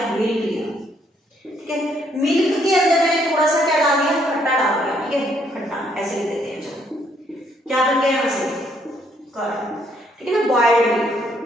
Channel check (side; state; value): both; normal; correlation 0.70